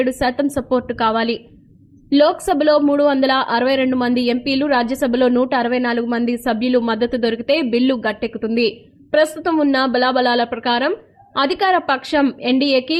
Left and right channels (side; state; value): both; identical; correlation 1.00